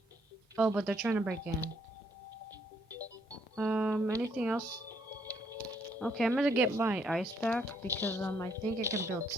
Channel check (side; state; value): both; normal; correlation 0.70